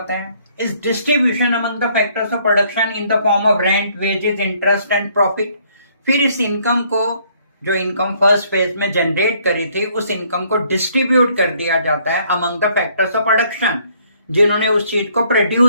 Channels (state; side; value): inverted; both; correlation -0.65